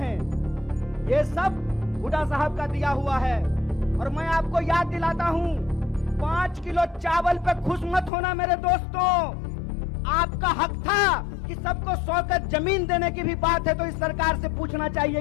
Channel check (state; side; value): drops out; right; at 8.1 s